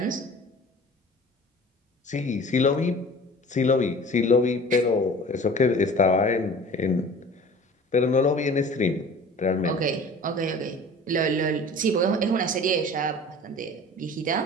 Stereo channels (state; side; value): normal; both; correlation 0.43